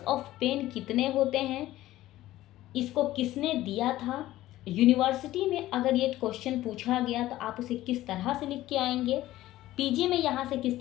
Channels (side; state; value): right; quieter; 15.4 dB